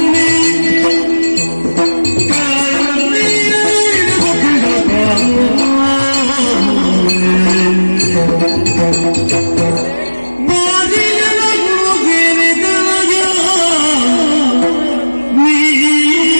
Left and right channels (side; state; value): both; inverted; correlation -1.00